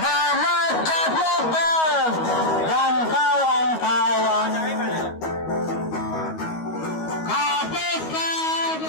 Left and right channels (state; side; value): late; right; 13 ms